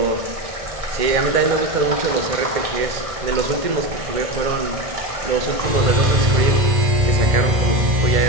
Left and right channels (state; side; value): late; left; 1.5 ms